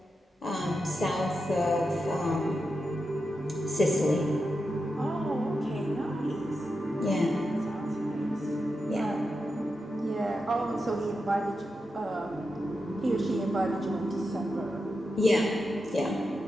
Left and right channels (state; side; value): normal; both; correlation 0.88